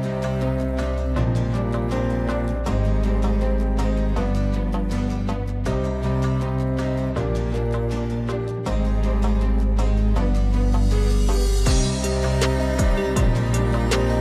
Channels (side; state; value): both; identical; correlation 1.00